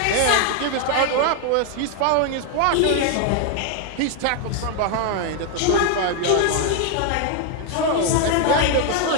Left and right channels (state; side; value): different; both; correlation 0.00